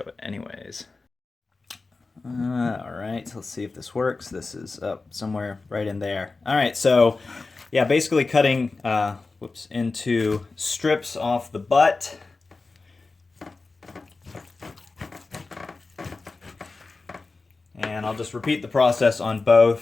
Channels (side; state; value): right; quieter; 3.8 dB